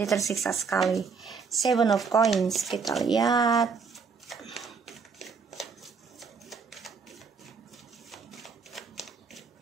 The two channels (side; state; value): left; quieter; 5.3 dB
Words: tersiksa sekali. 7 of Coins, kita lihat.